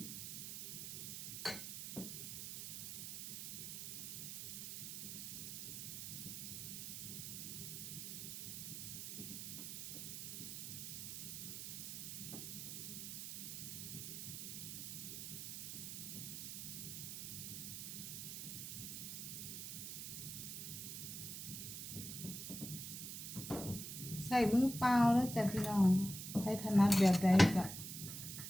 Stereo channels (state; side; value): noise; right; hiss, 6 dB below the sound